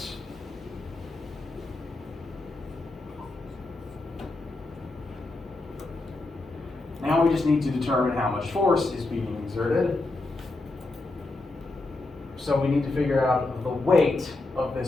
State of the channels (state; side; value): quieter; right; 3.1 dB